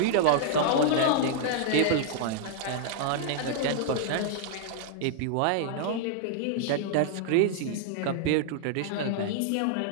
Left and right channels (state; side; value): different; both; correlation -0.01